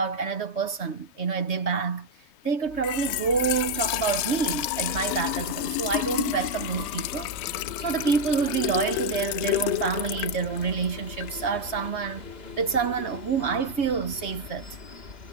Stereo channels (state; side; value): late; right; 3.2 ms